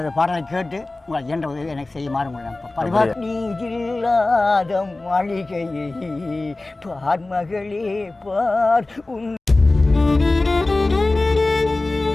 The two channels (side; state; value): right; quieter; 3.0 dB